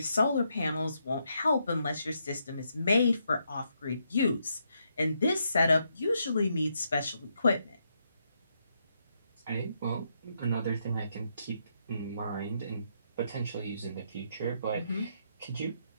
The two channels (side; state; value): both; inverted; correlation -0.78